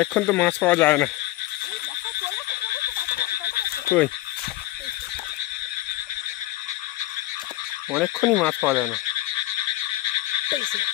তো মাছ পাওয়া যায় না। কই? অনেকক্ষণই মাছ পাওয়া যায় না।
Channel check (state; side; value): quieter; right; 16.7 dB